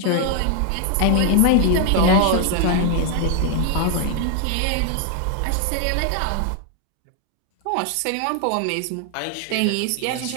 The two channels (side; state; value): both; different; correlation 0.00